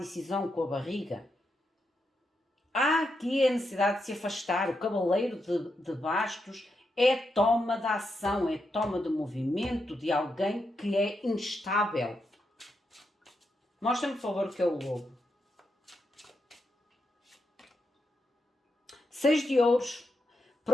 com a barriga. Há aqui a necessidade de se afastar. O cavaleiro de bastos é toma de ação, é toma de movimento de alguém que é instável. Mostra-me, por favor, o que é o lobo. 6 de ouros.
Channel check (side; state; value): both; normal; correlation 0.84